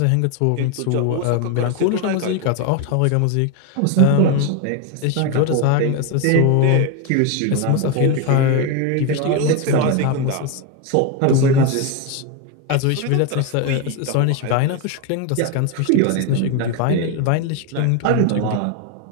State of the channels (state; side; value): different; both; correlation 0.02